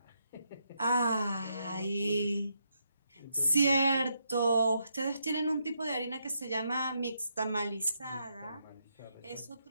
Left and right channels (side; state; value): both; inverted; correlation -0.79